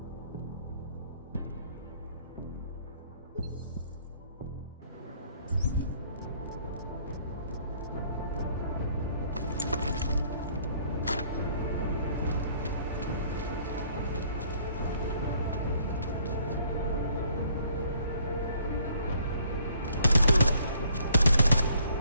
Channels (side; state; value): both; inverted; correlation -0.62